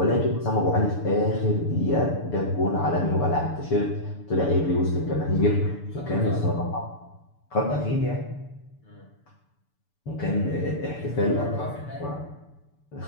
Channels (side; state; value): right; late; 6.9 ms